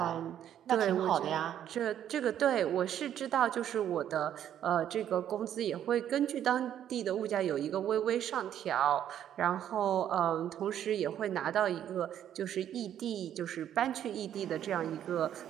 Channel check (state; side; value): quieter; left; 10.4 dB